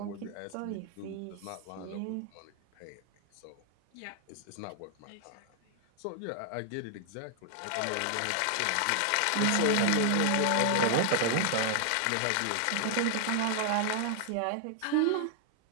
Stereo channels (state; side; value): different; both; correlation 0.00